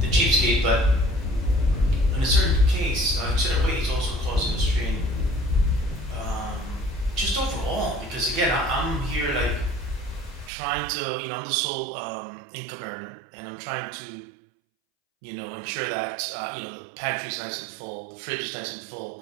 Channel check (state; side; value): drops out; left; at 10.5 s